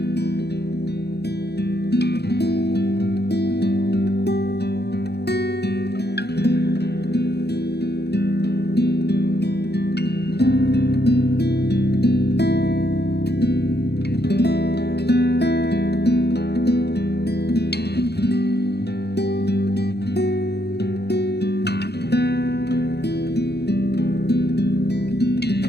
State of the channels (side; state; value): right; late; 0.48 ms